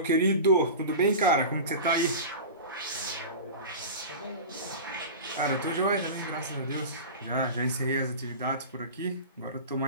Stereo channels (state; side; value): inverted; both; correlation -0.31